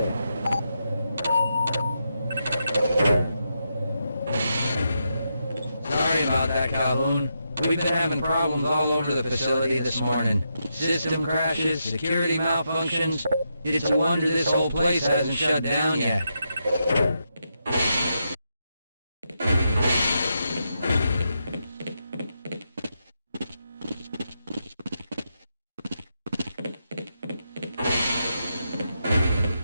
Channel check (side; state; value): both; inverted; correlation -0.83